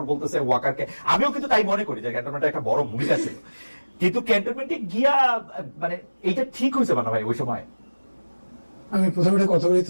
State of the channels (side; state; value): both; inverted; correlation -1.00